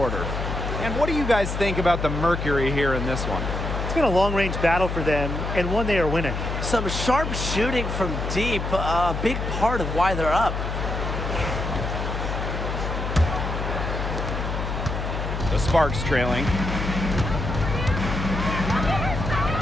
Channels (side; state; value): left; noise; hum, 3 dB below the sound